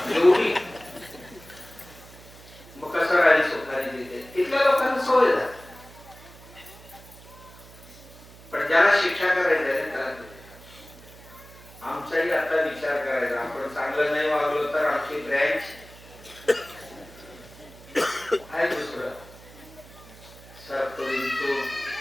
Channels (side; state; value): right; noise; hum, 20 dB below the sound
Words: एवढी. मग कसं राहिली सुखारी तिथे, तिथल्या लोकांना सवय झाली. पण ज्याला शिक्षा करायची आहे त्याला आमचाही आता विचार करायचा, आपण चांगलं नाही वागलो तर आमची ब्रँच आहे दुसरं सरतो